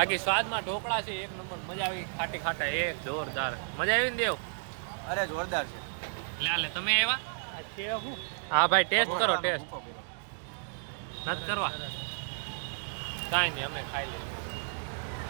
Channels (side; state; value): left; silent; digital silence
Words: સ્વાદમાં ઢોકળા છે એક નંબર. મજા આવી. ખાટા એક જોરદાર મજા આવી ને દેવ. અરે જોરદાર છે. લે તમે આવ્યા. હા ભાઈ ટેસ્ટ કરો. ટેસ્ટ નથી કરવા કાંઈ નહીં અમે ખાઈ લઈએ.